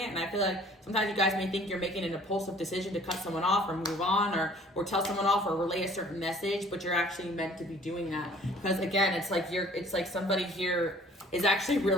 And I feel like sometimes you guys may think you're making an impulsive decision to cut someone off or move on, or tell someone off or relay a certain message, but you're actually meant to be doing that, because again, it's like somebody here is actually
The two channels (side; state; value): both; normal; correlation 0.53